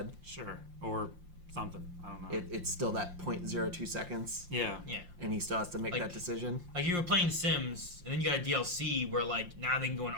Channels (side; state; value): left; late; 5.7 ms